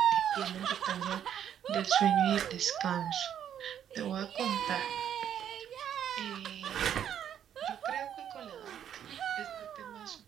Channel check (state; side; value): quieter; left; 9.6 dB